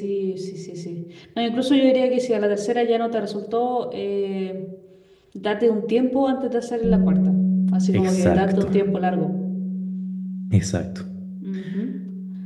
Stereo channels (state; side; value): identical; both; correlation 1.00